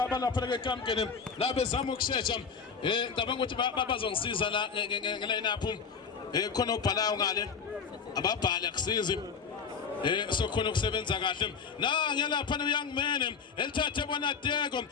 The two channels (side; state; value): right; quieter; 5.9 dB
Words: ke kamkeni la bezama ukushesha ngicabanga ukuthi bazongisiza la ngeline up khona ubhalayo ngale ababhali akusizi sokhona ukusebenza kahle ngiyalapha noyoung man elithathe bona Deko